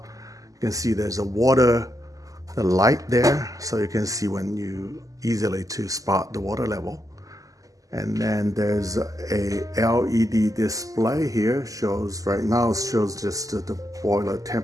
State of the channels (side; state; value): left; late; 0.17 ms